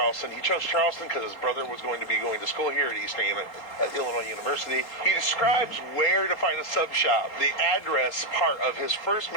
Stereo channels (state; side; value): late; right; 3.8 ms